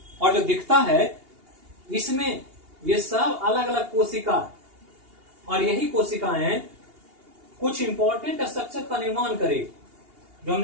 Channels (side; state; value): left; late; 2.8 ms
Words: और जो दिखता है इसमें ये सब अलग अलग कोशिका, और यही कोशिकाएं कुछ इंपॉर्टेंट स्ट्रक्चर का निर्माण करेगी। जो